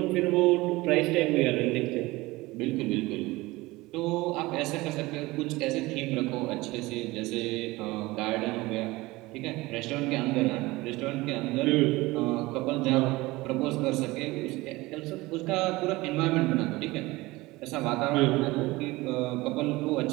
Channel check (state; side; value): quieter; left; 20.7 dB